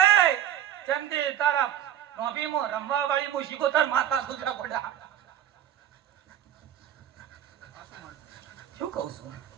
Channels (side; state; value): left; quieter; 11.0 dB